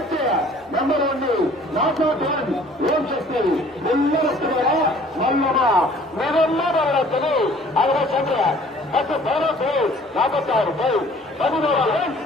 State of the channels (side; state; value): both; normal; correlation 0.53